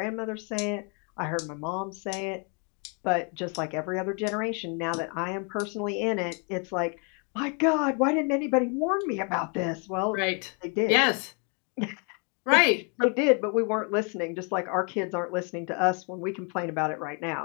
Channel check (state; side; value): quieter; right; 36.3 dB